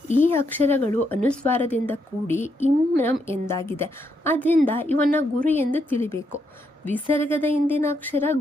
ಈ ಅಕ್ಷರಗಳು ಅನುಸ್ವಾರದಿಂದ ಕೂಡಿ ಇಮ್ರಂ ಎಂದಾಗಿದೆ. ಆದ್ದರಿಂದ ಇವನ್ನ ಗುರು ಎಂದು ತಿಳಿಬೇಕು. ವಿಸರ್ಗದ ಹಿಂದಿನ ಅಕ್ಷರ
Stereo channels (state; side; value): normal; both; correlation 0.78